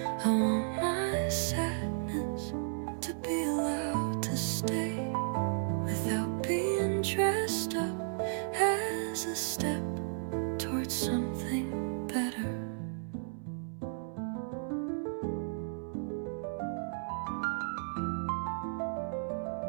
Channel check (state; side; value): silent; left; 55 dB below the other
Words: I want my sadness to be allowed to stay without being dressed up as a step towards something better.